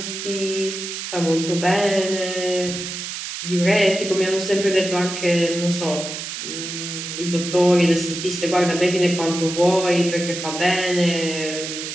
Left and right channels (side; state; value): right; noise; hiss, 7 dB below the sound